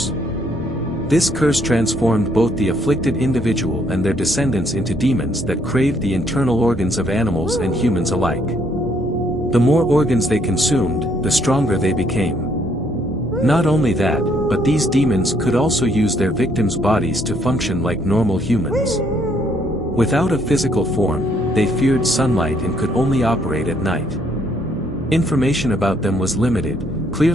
This curse transformed both the afflicted individual and their descendants into demons that craved the internal organs of animals and humans alike. The more organs they consumed, the stronger they became. Not only that, but these demons could also use their victims' bodies to function like normal humans. Without a physical form, they feared sunlight and could only operate at night. Information about them was limited,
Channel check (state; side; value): normal; both; correlation 0.68